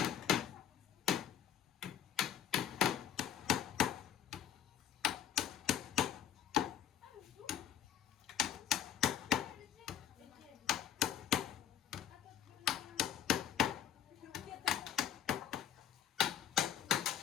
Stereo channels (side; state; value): right; quieter; 10.3 dB